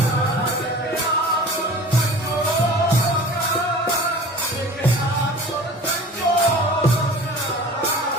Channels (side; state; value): both; normal; correlation 0.41